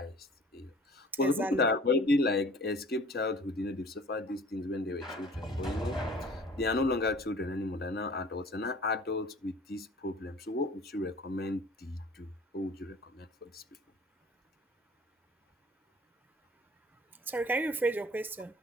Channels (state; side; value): normal; both; correlation 0.48